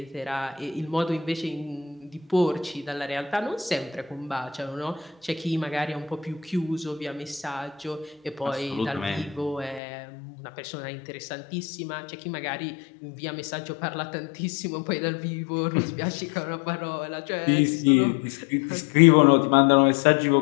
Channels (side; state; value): right; drops out; at 9.8 s